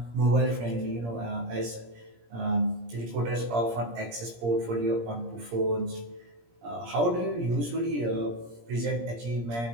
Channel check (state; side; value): late; left; 17 ms